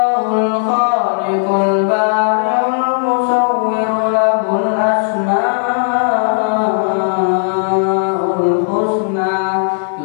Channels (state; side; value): silent; right; digital silence